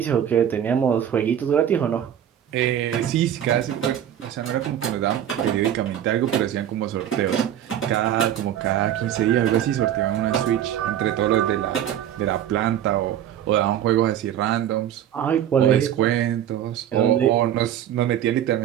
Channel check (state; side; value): quieter; left; 10.5 dB